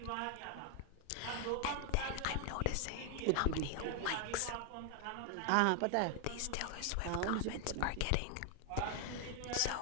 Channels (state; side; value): different; both; correlation 0.00